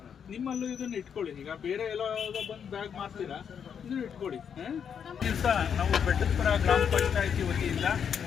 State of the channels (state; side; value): quieter; right; 7.6 dB